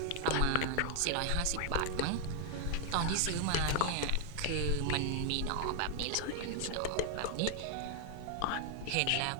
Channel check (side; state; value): both; different; correlation 0.00